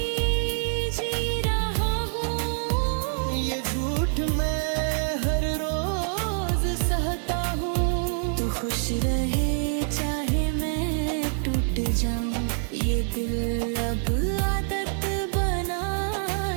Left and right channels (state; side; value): silent; left; digital silence